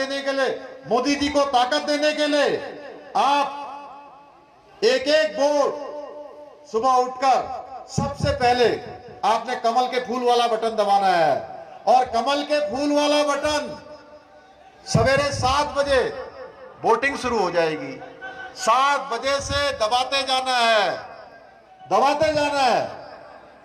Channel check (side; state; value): both; identical; correlation 1.00